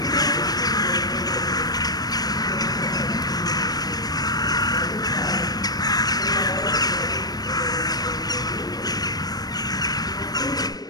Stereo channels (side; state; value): right; late; 0.19 ms